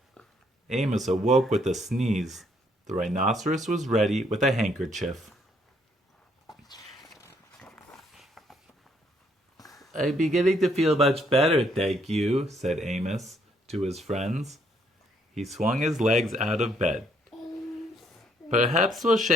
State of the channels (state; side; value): normal; both; correlation 0.69